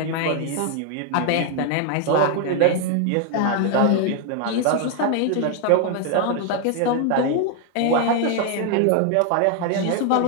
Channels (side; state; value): both; different; correlation 0.00